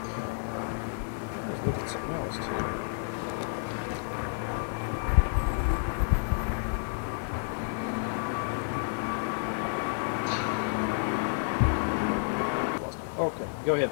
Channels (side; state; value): right; silent; digital silence